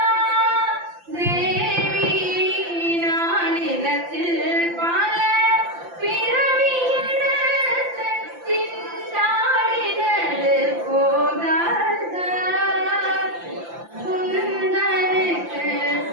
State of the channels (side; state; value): left; late; 5.8 ms